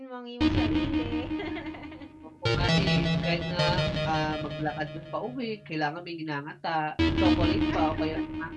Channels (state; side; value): identical; both; correlation 1.00